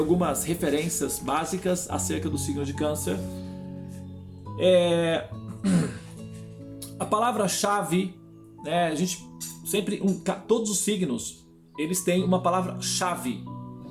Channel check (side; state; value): both; identical; correlation 1.00